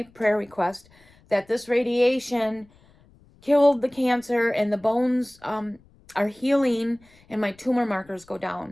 prayer request, that this radiation killed the cancer and the bones are healing and my tumor markers go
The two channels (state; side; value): noise; left; rumble, 29 dB below the sound